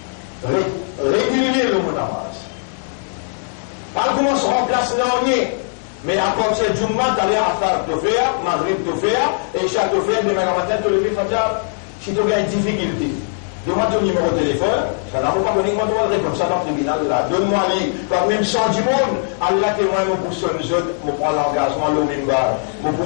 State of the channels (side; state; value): right; silent; digital silence